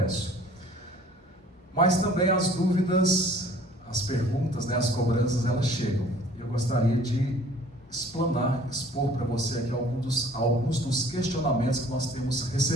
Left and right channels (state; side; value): normal; both; correlation 0.52